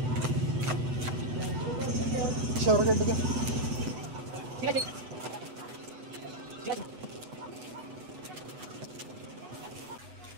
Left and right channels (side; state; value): left; late; 8.1 ms